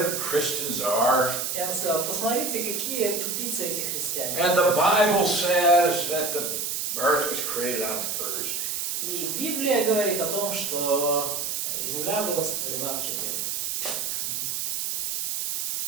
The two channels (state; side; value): noise; right; hiss, 2 dB below the sound